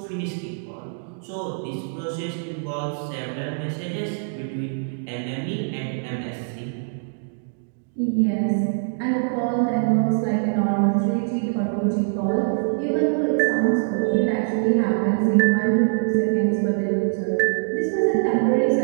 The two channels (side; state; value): left; silent; digital silence